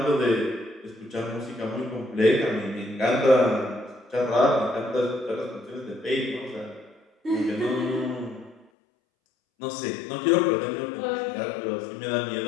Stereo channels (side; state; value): right; drops out; at 8.7 s